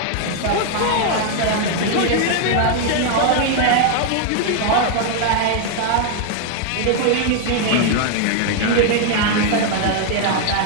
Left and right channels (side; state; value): both; different; correlation 0.00